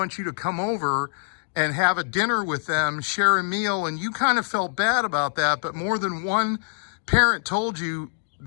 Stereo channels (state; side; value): silent; right; digital silence